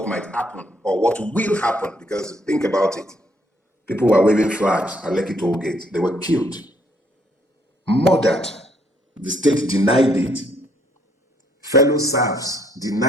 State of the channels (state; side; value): normal; both; correlation 0.68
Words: might happen or what will happen, because think about it, people were waving flags at Lekki toll gate. They were killed, murdered. The state denied it. Fellow serfs